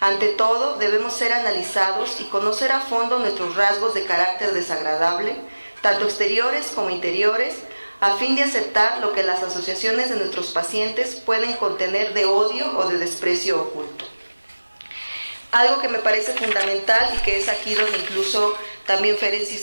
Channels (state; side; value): inverted; both; correlation -1.00